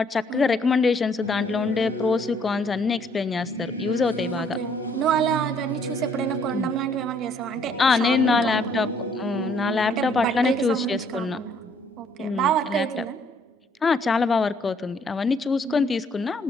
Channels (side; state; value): both; normal; correlation 0.64